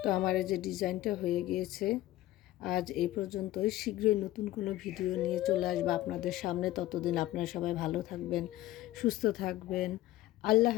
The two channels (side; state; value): right; quieter; 15.5 dB